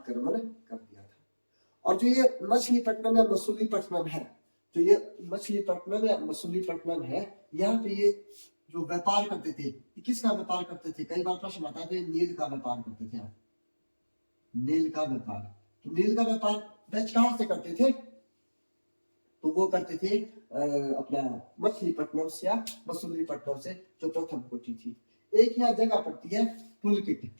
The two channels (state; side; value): inverted; both; correlation -1.00